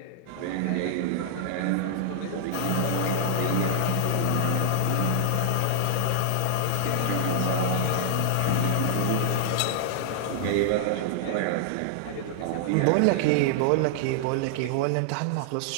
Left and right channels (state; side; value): different; both; correlation -0.01